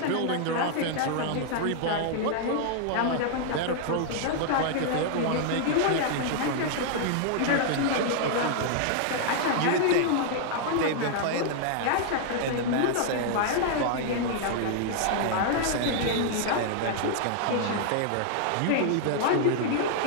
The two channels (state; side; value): different; both; correlation -0.01